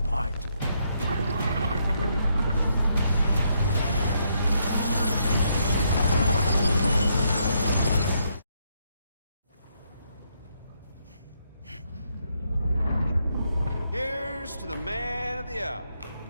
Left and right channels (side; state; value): both; inverted; correlation -0.76